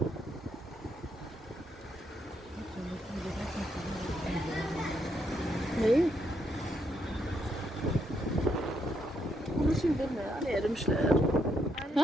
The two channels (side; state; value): both; normal; correlation 0.77